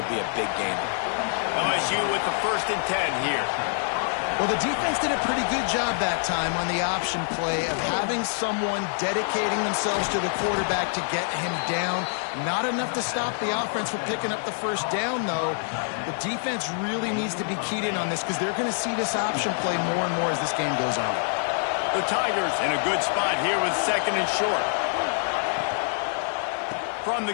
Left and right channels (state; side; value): silent; right; 60 dB below the other